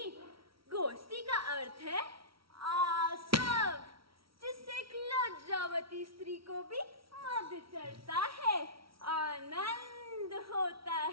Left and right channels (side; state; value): left; late; 0.75 ms